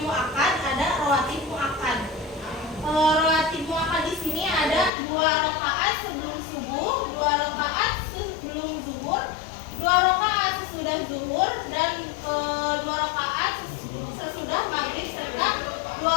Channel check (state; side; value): drops out; right; at 4.9 s